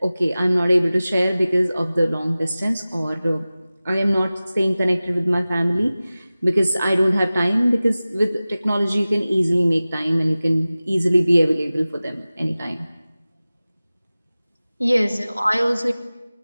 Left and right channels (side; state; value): both; inverted; correlation -0.97